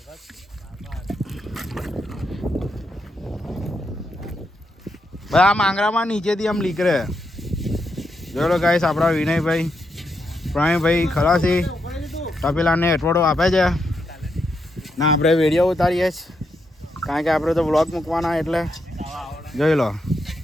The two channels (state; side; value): normal; both; correlation 0.82